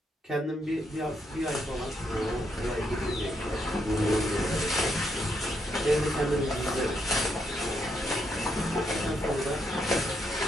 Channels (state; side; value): normal; both; correlation 0.77